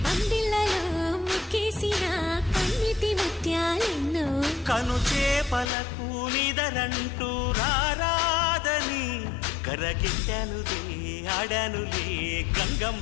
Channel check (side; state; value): right; drops out; at 5.7 s